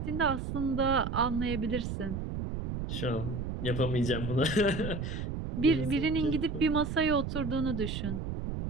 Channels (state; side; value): noise; right; rumble, 4 dB below the sound